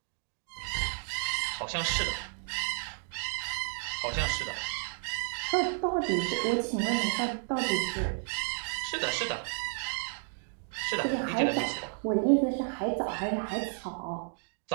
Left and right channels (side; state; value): left; silent; 57 dB below the other